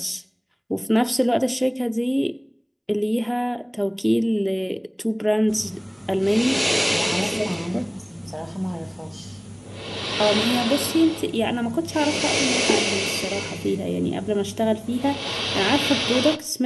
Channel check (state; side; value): identical; both; correlation 1.00